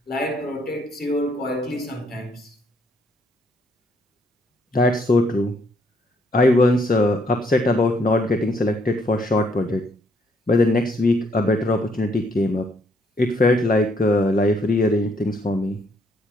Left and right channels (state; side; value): normal; both; correlation 0.69